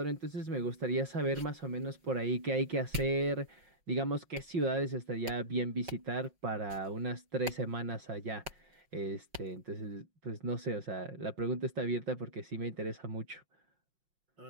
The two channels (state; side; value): late; left; 5.5 ms